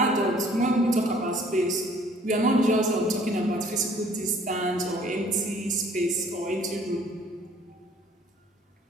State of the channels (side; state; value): both; normal; correlation 0.56